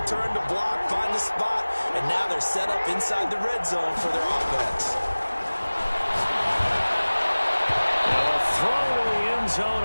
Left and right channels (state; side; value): inverted; both; correlation -1.00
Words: turned to block, find the spot, and now they're set up inside the red zone for their offense. Now a throw to the end zone